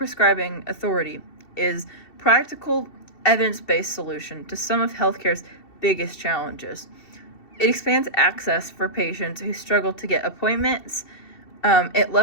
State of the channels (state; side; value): late; right; 2.7 ms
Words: authority is practical, evidence-based solution to some of healthcare's biggest challenges. It expands access for patients who struggle to get appointments. It